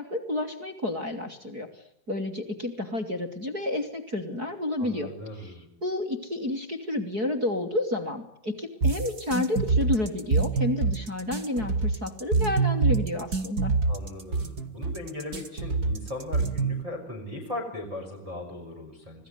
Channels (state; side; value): late; left; 4.7 ms